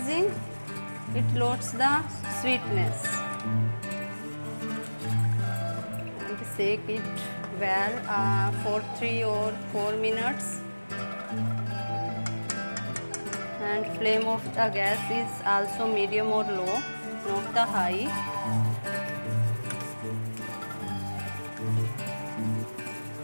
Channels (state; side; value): inverted; both; correlation -1.00